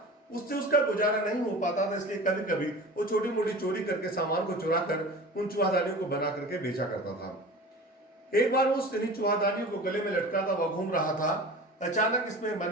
उससे उसका गुजारा नहीं हो पाता था, इसलिए कभी कभी वो छोटी मोटी चोरी करके सामान को चुरा कर उन चूहादानियों को बना करके बेचा करता था। एक बार वो चूहादानियों को गले में लटका था, वह घूम रहा था। अचानक इसमें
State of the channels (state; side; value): normal; both; correlation 0.37